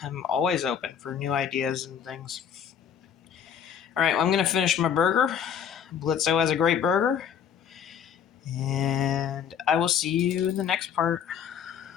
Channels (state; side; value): quieter; right; 8.1 dB